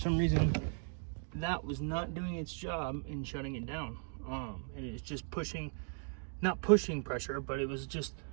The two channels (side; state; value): left; silent; 53 dB below the other